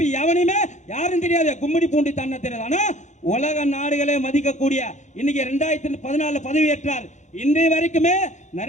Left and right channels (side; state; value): right; late; 0.35 ms